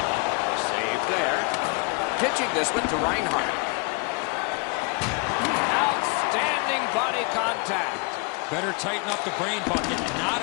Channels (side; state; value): right; quieter; 32.4 dB